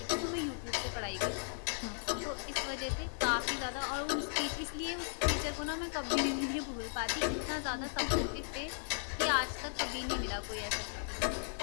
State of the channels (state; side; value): silent; right; 54 dB below the other